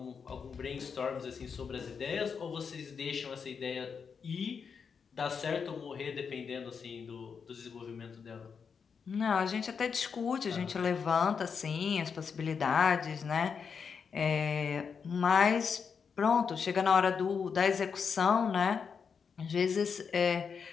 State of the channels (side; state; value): right; quieter; 6.2 dB